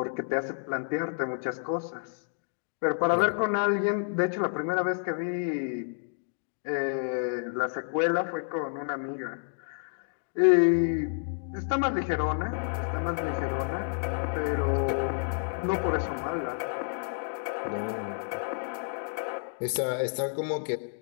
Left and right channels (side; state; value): right; silent; digital silence